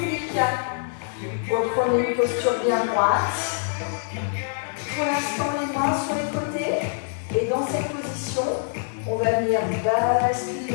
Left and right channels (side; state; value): right; silent; 60 dB below the other